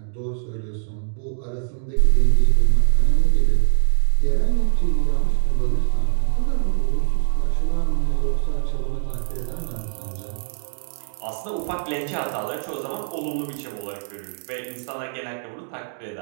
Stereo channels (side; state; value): left; silent; digital silence